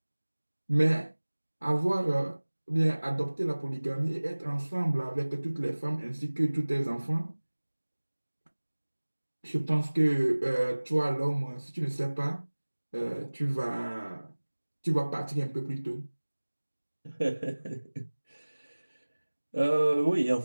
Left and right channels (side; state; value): both; inverted; correlation -1.00